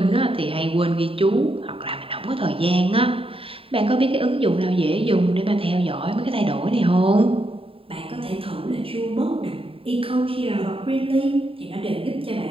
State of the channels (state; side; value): late; left; 0.27 ms